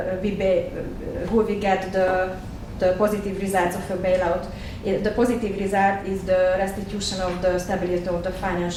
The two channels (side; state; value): both; identical; correlation 1.00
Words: get the positive results of a bailout. The positive result is the restitution of the stability of the